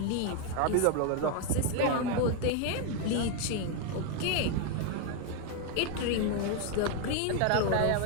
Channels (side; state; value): both; different; correlation 0.01